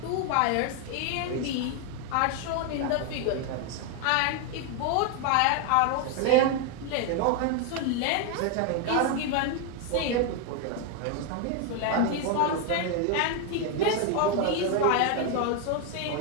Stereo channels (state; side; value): different; both; correlation 0.01